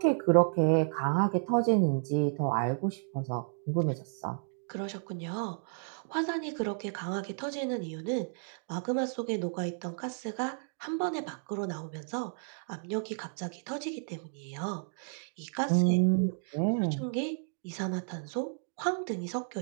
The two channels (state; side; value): silent; left; digital silence